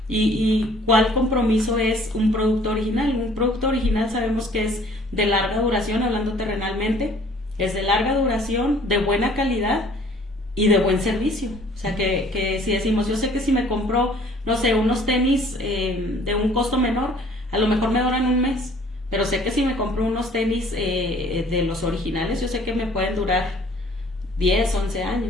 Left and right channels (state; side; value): normal; both; correlation 0.55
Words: ¿Y cuál compromiso es un producto original? Un producto original sabemos que es de larga duración, hablando terrenalmente, es de larga duración, de buena calidad y de buen servicio. O sea, que si decimos, yo sé que si me compro, no sé, unos tenis de un costo menor, a lo mejor me duran un mes, pero sé que si me compro unos tenis de los originales, yo sé que me pueden durar 10, 11